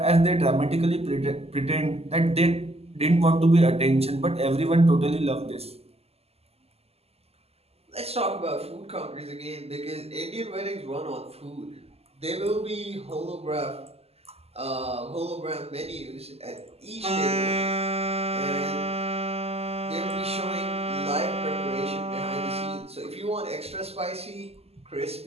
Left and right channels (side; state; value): left; late; 0.29 ms